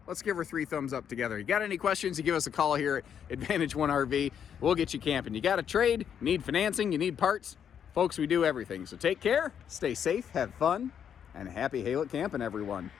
let's give her 3 thumbs up together. You got any questions, you give us a call here at Advantage One RV. We'll get you camping. You got a trade, you need financing, you need parts. Folks, we do everything. So take care, stay safe, have fun, and happy Haylett camping, everyone.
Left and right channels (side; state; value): right; quieter; 8.3 dB